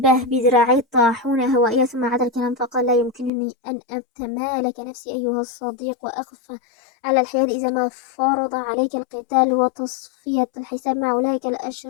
بذراعي الطاحونة هوائية، ثم عاد الكلام فقال: لا يمكنني أن أتمالك نفسي أيها الصديق وأقف على الحياد إذا ما فرض عليك القتال وتصفية الحساب مع أولئك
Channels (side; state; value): right; drops out; at 3.3 s